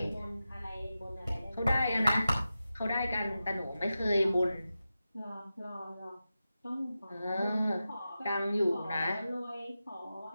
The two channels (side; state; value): both; inverted; correlation -0.92